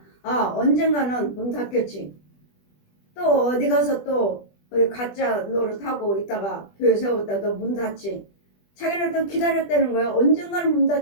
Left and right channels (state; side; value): late; right; 20 ms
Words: 아 언젠가는 문 닫겠지. 또 어디 가서 또 가짜 노릇하고 있다가 교회 세웠다 또 문 닫지. 자기는 또 기다렸다는 거예요. 언젠가는 문